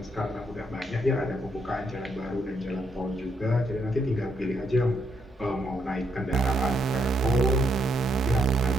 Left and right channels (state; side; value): normal; both; correlation 0.76